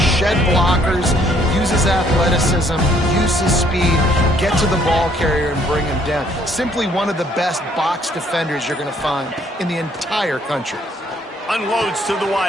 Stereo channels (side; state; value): both; normal; correlation 0.64